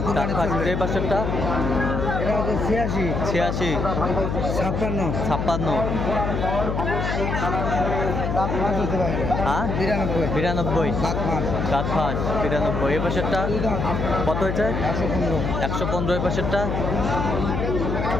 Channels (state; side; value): noise; left; hum, 1 dB below the sound